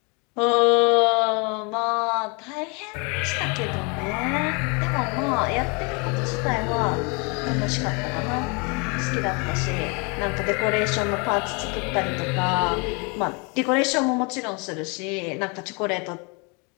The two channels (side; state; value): right; quieter; 31.9 dB